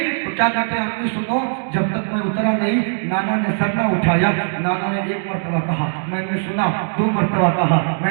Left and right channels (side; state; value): left; silent; digital silence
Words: تو کیا کہتے ہیں امی سنو, جب تک میں اترا نہیں نانا نے سر نہ اٹھایا. نانا نے 1 مرتبہ کہا, میں نے سنا. 2 مرتبہ کہا,